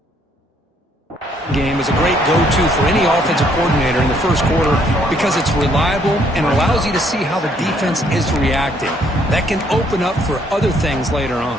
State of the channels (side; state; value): both; normal; correlation 0.67